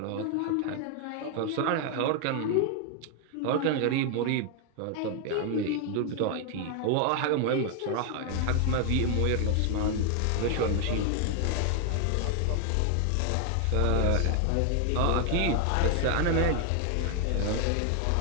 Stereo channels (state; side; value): different; both; correlation 0.00